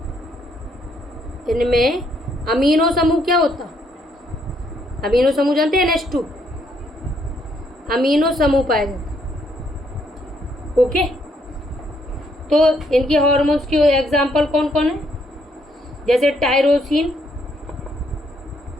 इनमें अमीनो समूह क्या होता, अमीनो समूह जानते हैं, NH2 अमीनो समूह पाया जाता है। ओके, तो इनके हार्मोन्स के एग्जाम्पल कौन कौन है, जैसे टायरोसिन,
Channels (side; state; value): both; normal; correlation 0.71